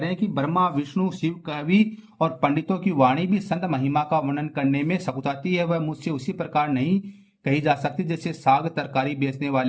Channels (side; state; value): both; identical; correlation 1.00